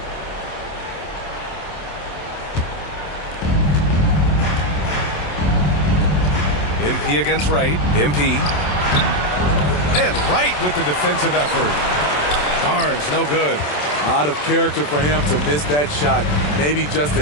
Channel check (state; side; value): late; right; 27 ms